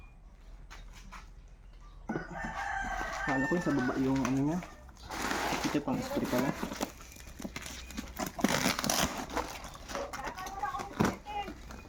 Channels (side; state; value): both; identical; correlation 1.00